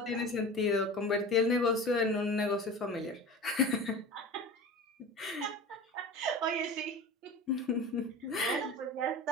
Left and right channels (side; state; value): both; normal; correlation 0.34